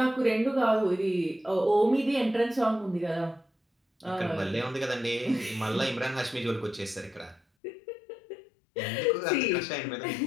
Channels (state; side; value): drops out; right; at 7.4 s